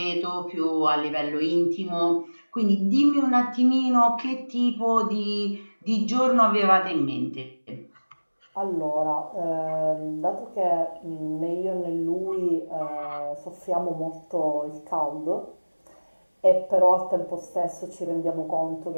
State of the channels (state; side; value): inverted; both; correlation -1.00